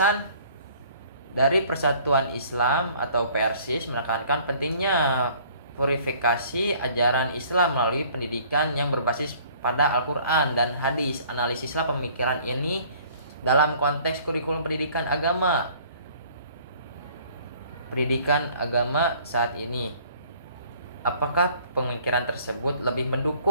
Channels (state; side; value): inverted; both; correlation -0.55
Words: dari Persatuan Islam atau Persis menekankan pentingnya purifikasi ajaran Islam melalui pendidikan yang berbasis pada Al-Quran dan hadis. Analisislah pemikiran ini dalam konteks kurikulum pendidikan agama saat ini. Apakah pemikiran tersebut lebih